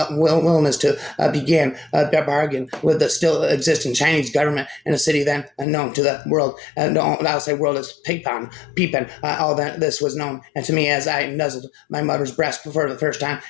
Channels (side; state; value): right; drops out; at 5.7 s